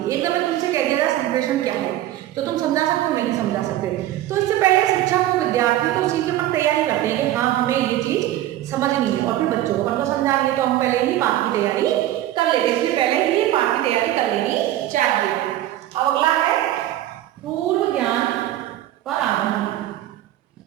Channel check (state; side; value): quieter; left; 13.9 dB